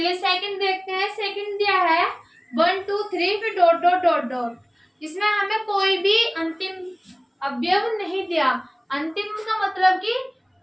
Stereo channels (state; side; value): identical; both; correlation 1.00